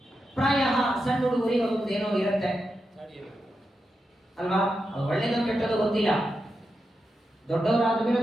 ಪ್ರಾಯ ಸಣ್ಣ ಹುಡುಗರಿಗೆ ಒಂದೇನೋ ಇರುತ್ತೆ ಅಲ್ವಾ, ಅದು ಒಳ್ಳೆಯದು ಕೆಟ್ಟದ್ದು ಗೊತ್ತಿಲ್ಲ. ದೊಡ್ಡವರಾದ ಮೇಲೆ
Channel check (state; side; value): normal; both; correlation 0.87